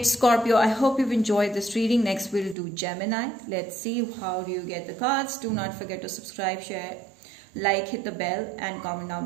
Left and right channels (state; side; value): drops out; left; at 2.6 s